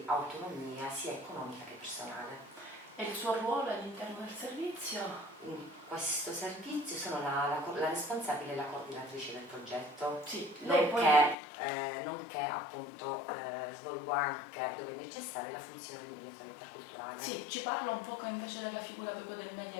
autonomia sia economica che personale. E il suo ruolo all'interno del servizio? In questo servizio sono la responsabile e la coordinatrice del progetto, Sì, lei nonché appunto svolgo anche, dove è necessaria, la funzione di mediatore interculturale. Sì, ci parla un poco invece della figura proprio del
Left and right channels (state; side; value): drops out; right; at 11.4 s